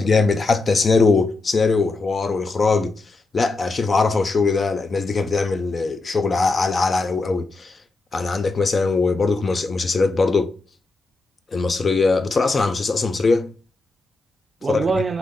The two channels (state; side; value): quieter; right; 3.4 dB